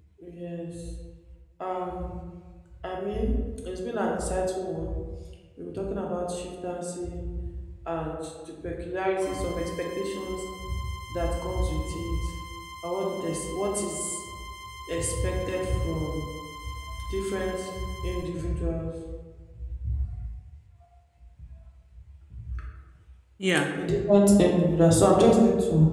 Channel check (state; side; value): identical; both; correlation 1.00